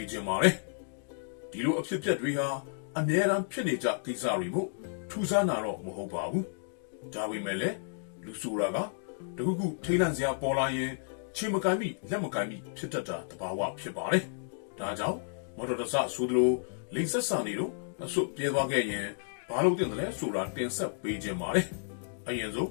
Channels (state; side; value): silent; right; digital silence